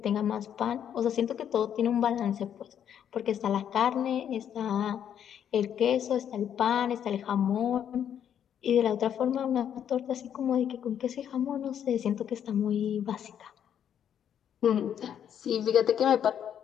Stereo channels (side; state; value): right; quieter; 9.2 dB